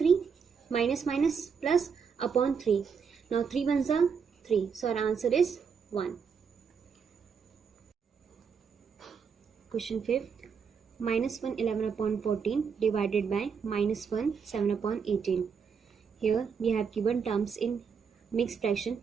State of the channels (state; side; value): quieter; left; 6.3 dB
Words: minus minus plus upon 3. Now 3 1s are 3. So our answer is 1. Question 5th. Minus 1 11 upon 14 divided by minus 1 7 upon 18. Here we have given terms in mixed fraction.